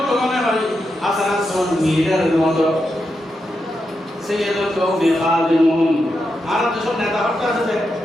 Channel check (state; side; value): normal; both; correlation 0.86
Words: মনে হয় হাসান সন লিডারের মতো সাইয়্যিদুল কওমি খাদিমুন আর যেসব নেতা হত্যা আছে